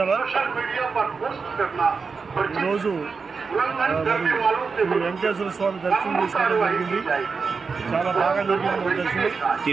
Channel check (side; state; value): left; quieter; 5.0 dB